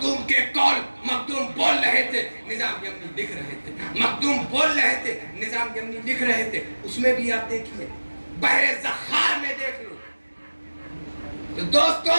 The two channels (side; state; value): both; inverted; correlation -1.00